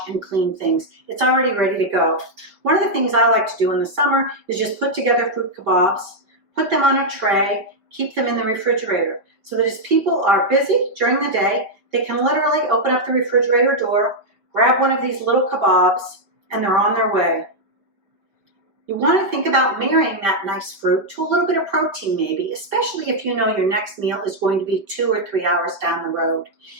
and clean things. It's already ready to go. One of the things I like to do in the summer is just put together fruit kebabs, put them on a tray, keep them in the refrigerator so that as people are busy during the day, they can literally open up the refrigerator door, grab one of these little kebabs, and they're on their way. You want to think about marrying that nice fruit to a little bit of protein maybe, especially if you know your next meal is going to be 2 or 3 hours down the road.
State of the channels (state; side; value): late; left; 5.2 ms